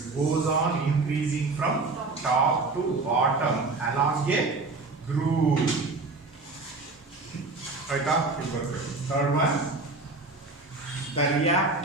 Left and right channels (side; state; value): left; quieter; 3.5 dB